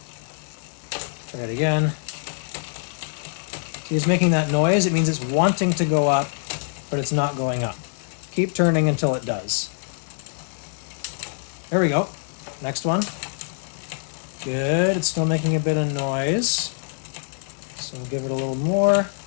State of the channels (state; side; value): silent; right; 62 dB below the other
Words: Try it again. See, it's making that noise. It means it's wanting to go up, but it's not going up. Keep turning until it does. There we go. Next one. Good. It's still making a bit of noise. So we'll give it a little more.